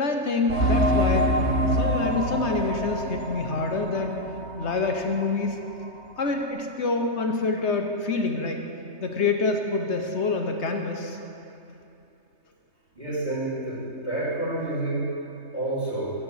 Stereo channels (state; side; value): late; right; 3.2 ms